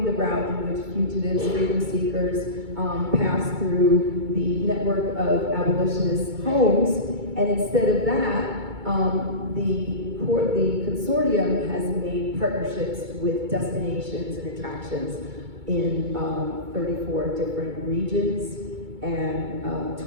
the route in which fugitives, freedom seekers pass through the network of abolitionist homes. And instead of that, the consortium has made partnerships with destinations and attractions in 34 different regions and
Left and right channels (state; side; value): late; left; 2.2 ms